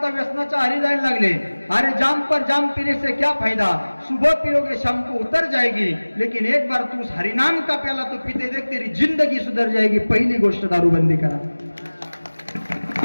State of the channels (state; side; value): inverted; both; correlation -1.00